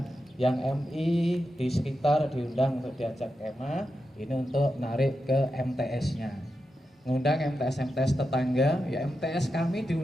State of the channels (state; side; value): normal; both; correlation 0.88